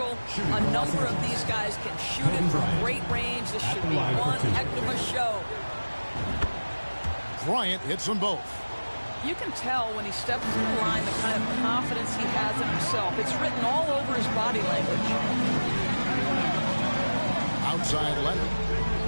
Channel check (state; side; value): inverted; both; correlation -1.00